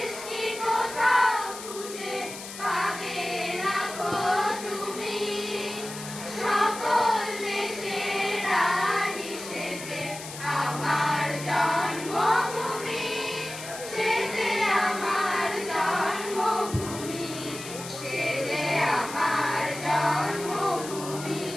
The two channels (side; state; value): left; noise; hiss, 11 dB below the sound